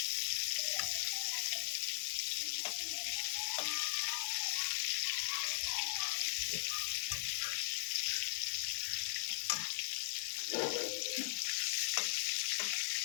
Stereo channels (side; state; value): right; silent; digital silence